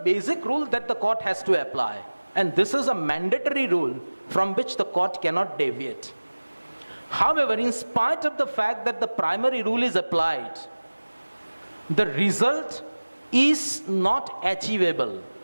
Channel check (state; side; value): inverted; both; correlation -1.00